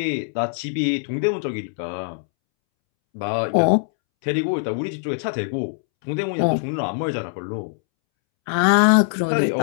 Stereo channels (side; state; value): right; silent; 64 dB below the other